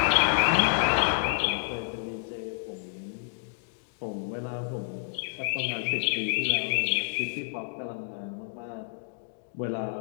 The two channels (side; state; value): right; silent; digital silence